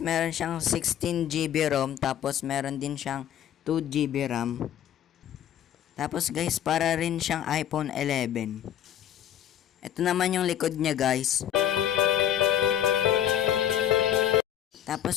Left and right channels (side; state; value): right; quieter; 10.8 dB